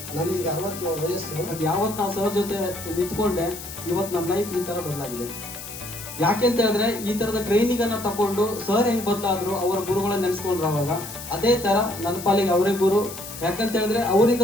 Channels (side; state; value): left; noise; hiss, 11 dB below the sound